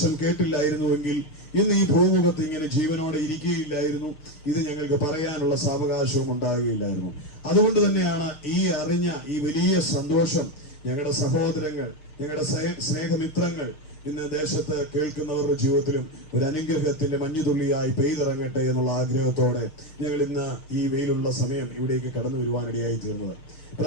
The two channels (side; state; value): right; late; 6.5 ms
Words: കേട്ടില്ലായിരുന്നുവെങ്കിൽ ഇന്ന് ഈ ഭൂമുഖത്ത് ഇങ്ങനെ ജീവനോടെ ഇരിക്കുകയില്ലായിരുന്നു. ഇത് ഞങ്ങൾക്ക് പറയാനുള്ള സാവകാശവും ഉണ്ടാകുകയില്ലായിരുന്നു. അതുകൊണ്ട് തന്നെയാണ് ഈ അറിഞ്ഞ ഈ വലിയ സന്തോഷം ഞങ്ങളുടെ സഹോദരങ്ങൾ, ഞങ്ങളുടെ സ്നേഹമിത്രങ്ങൾ ഇന്ന് ദേശത്ത് കേൾക്കുന്നവരുടെ ജീവിതത്തിലും ഒരു അനുഗ്രഹത്തിന്റെ മഞ്ഞുതുള്ളിയായി പെയ്തിറങ്ങട്ടെ എന്നുള്ള ആഗ്രഹത്തോടെ ഞങ്ങൾ ഇന്ന് ഈ വെയിലുള്ള സമയം ഇവിടേക്ക് കടന്നു വരുവാനിടയായി തീർന്നത്.